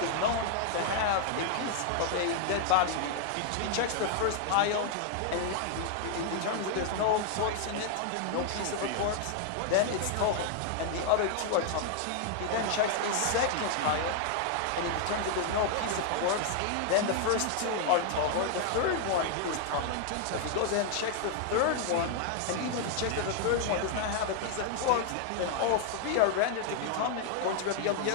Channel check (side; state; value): both; different; correlation 0.00